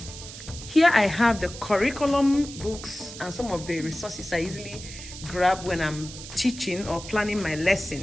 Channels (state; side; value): noise; right; hiss, 13 dB below the sound